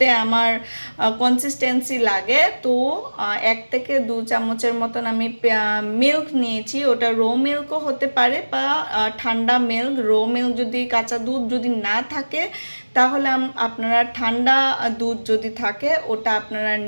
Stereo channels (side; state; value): both; inverted; correlation -1.00